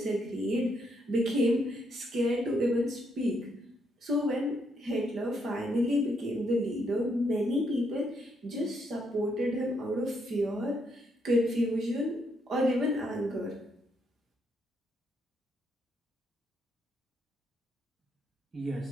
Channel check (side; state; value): both; normal; correlation 0.76